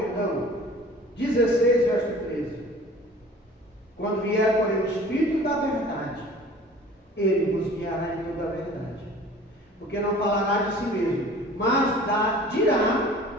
16, verso 13. Quando vier, porém, o Espírito da verdade, Ele vos guiará em toda a verdade. Porque não falará de si mesmo, mas dirá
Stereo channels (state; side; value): normal; both; correlation 0.46